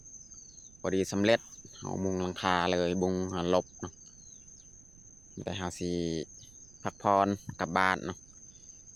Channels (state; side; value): noise; right; rumble, 23 dB below the sound